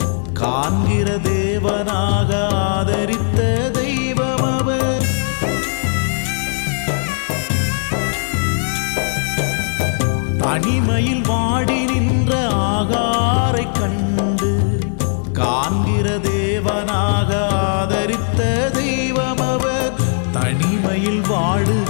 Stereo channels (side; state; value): right; silent; digital silence